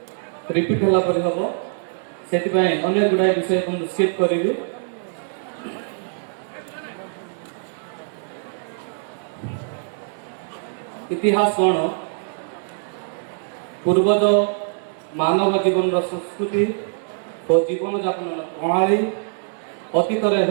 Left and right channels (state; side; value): silent; left; 63 dB below the other